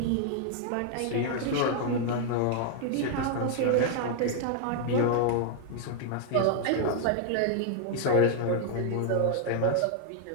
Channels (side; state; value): both; different; correlation 0.00